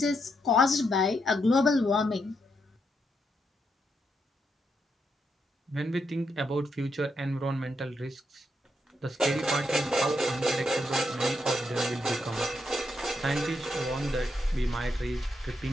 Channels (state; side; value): normal; both; correlation 0.80